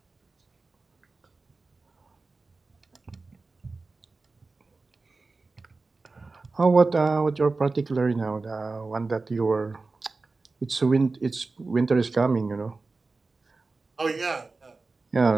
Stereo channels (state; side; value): quieter; left; 3.7 dB